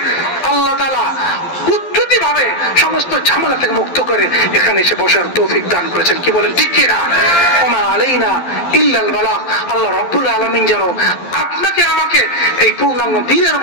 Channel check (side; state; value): right; late; 12 ms